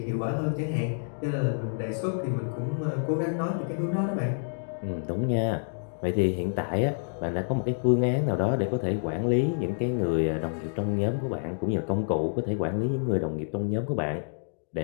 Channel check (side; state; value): right; silent; digital silence